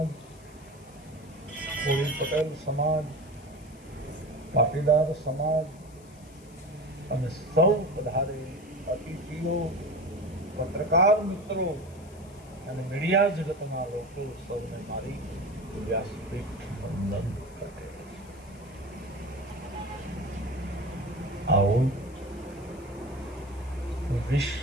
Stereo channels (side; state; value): left; noise; hiss, 25 dB below the sound